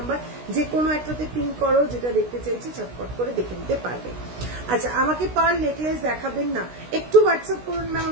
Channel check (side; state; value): left; late; 16 ms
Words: যে কোনো একটাতে পিন করো, যেটা দেখতে চাইছি চটপট করে দেখে নিতে পারবে। আচ্ছা আমাকে পার্ল নেকলেস দেখাবেন না? একটু হোয়াটসঅ্যাপ করুন ম্যাম,